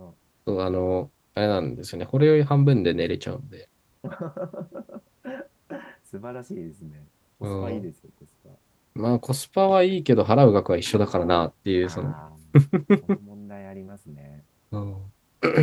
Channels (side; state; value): both; identical; correlation 1.00